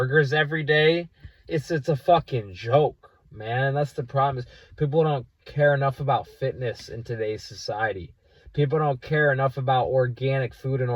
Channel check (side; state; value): both; identical; correlation 1.00